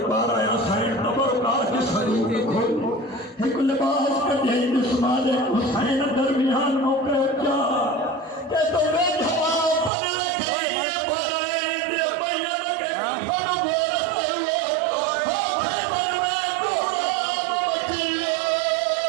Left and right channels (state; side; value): drops out; left; at 9.9 s